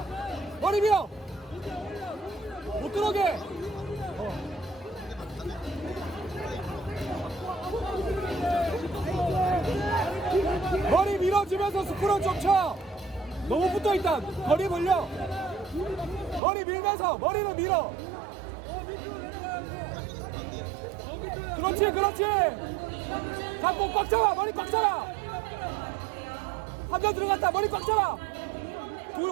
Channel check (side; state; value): left; drops out; at 16.4 s